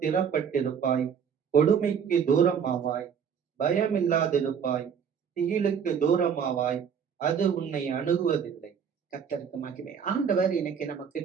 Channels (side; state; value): left; quieter; 7.3 dB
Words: கொடுமைக்கு தூரமாவாய், பயமில்லாதிருப்பாய், திகிலுக்கு தூரமாவாய், அது உன்னை அணுகுவதில்லை. கர்த்தருக்கு மகிமை. ஆண்டவர் இன்னைக்கு நம்ம